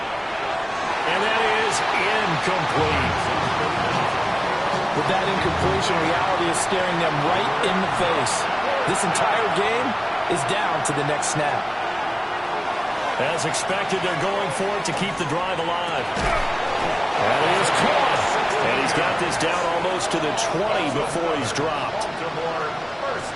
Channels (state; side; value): identical; both; correlation 1.00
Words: And that is incomplete. With that incompletion, reality is staring them right in the face. This entire game is down to the next snap. As expected, they're going for it to keep the drive alive. That is caught. And he's got this down almost to the 20 before he's dropped. Baltimore,